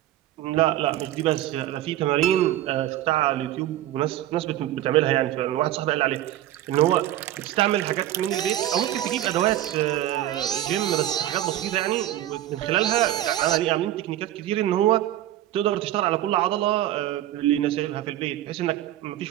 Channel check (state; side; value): quieter; left; 13.3 dB